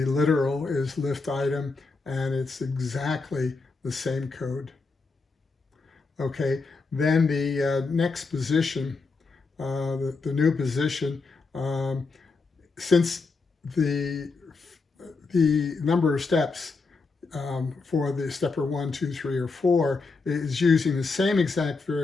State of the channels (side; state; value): right; quieter; 4.1 dB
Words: literal is lift item, and it's exactly the same code. Okay, then the next position, the new position, since the number of steps for the stepper 1, 2, 3, or 4 is using the same exact